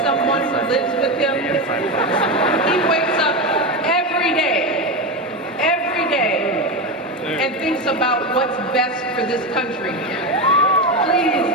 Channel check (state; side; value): normal; both; correlation 0.16